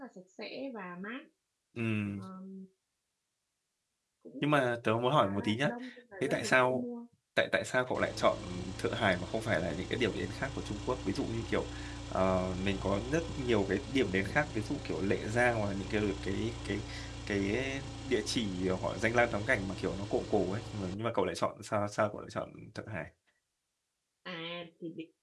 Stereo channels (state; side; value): identical; both; correlation 1.00